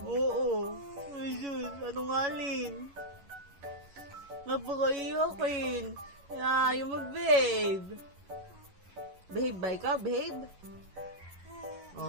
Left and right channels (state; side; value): late; left; 11 ms